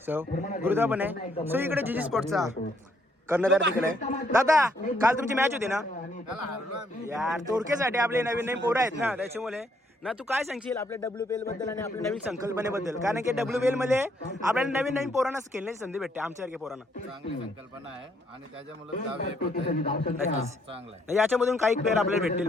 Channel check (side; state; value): both; normal; correlation 0.70